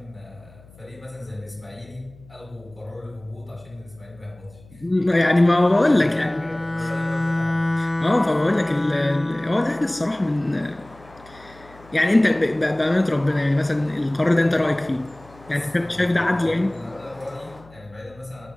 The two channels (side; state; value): left; noise; hum, 24 dB below the sound